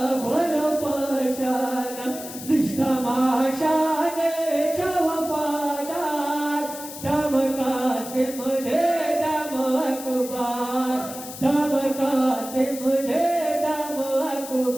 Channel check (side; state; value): left; noise; hiss, 12 dB below the sound